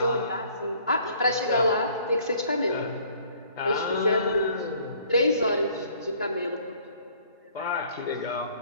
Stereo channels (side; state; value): both; inverted; correlation -0.57